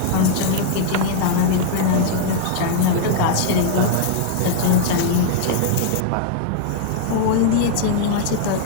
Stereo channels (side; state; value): both; different; correlation -0.01